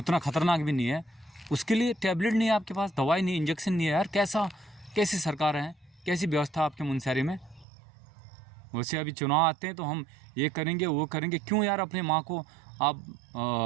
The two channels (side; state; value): left; drops out; at 7.7 s